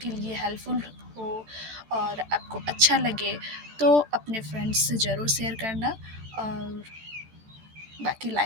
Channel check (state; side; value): late; left; 14 ms